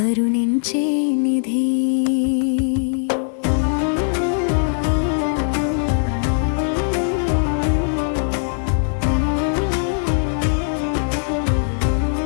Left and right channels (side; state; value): right; silent; digital silence